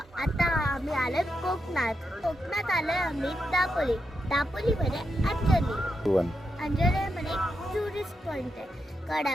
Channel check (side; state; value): both; normal; correlation 0.85